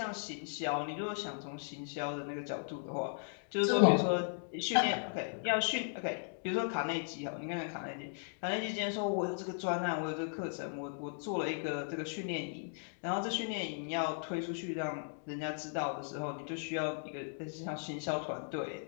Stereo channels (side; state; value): right; silent; digital silence